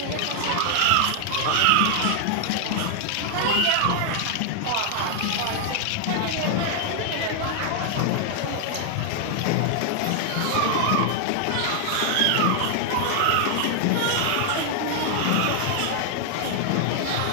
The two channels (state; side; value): different; both; correlation -0.01